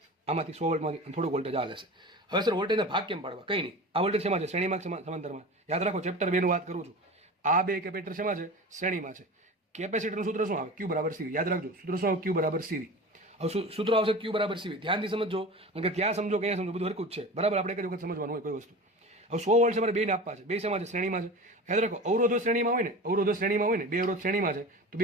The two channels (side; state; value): both; normal; correlation 0.33